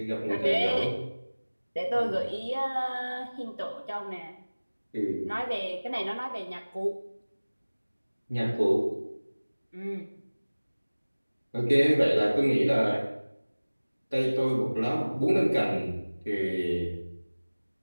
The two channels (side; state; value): both; inverted; correlation -1.00